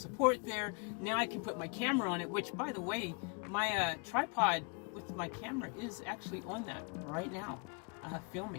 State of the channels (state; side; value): quieter; right; 35.1 dB